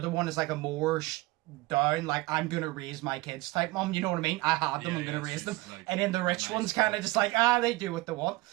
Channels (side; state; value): left; quieter; 20.6 dB